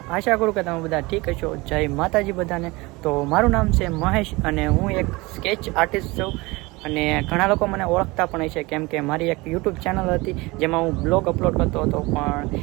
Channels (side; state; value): left; quieter; 23.2 dB